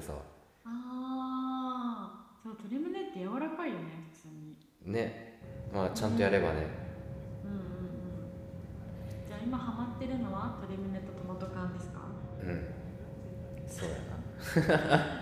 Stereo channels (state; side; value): identical; both; correlation 1.00